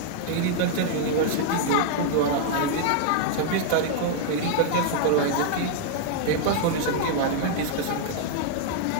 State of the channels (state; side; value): different; both; correlation 0.00